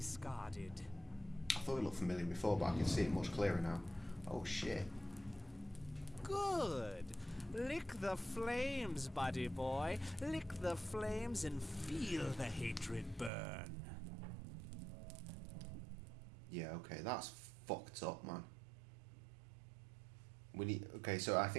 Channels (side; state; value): left; drops out; at 13.3 s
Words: I thought it looked familiar before, but I can see it much clearer now. Oh shit. Good. Lick the flames, buddy boy. Lick the flames and feel the hatred burn. Yeah, okay, that's fucked up, man. We need. Okay, so I